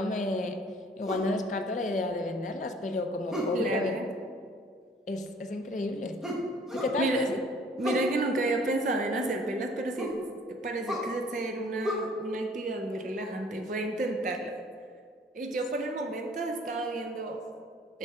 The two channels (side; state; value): both; normal; correlation 0.55